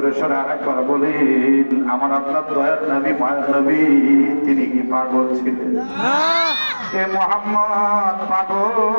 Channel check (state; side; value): inverted; both; correlation -1.00